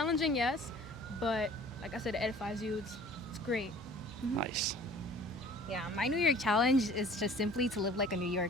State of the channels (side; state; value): both; normal; correlation 0.49